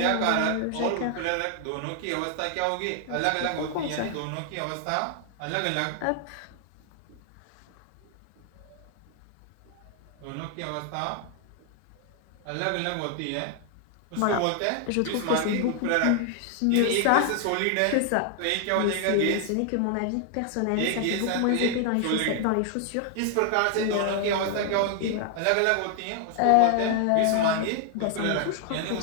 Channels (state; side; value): different; both; correlation 0.00